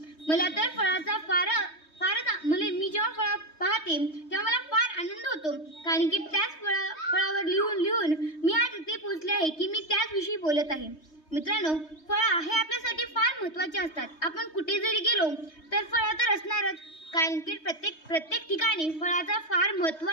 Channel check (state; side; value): late; right; 3.2 ms